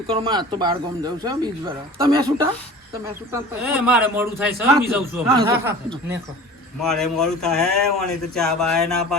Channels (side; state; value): both; normal; correlation 0.40